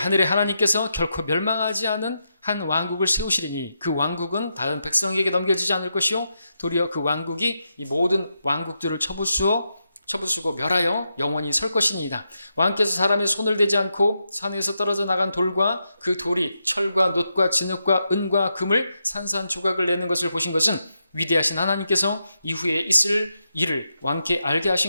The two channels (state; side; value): inverted; both; correlation -0.84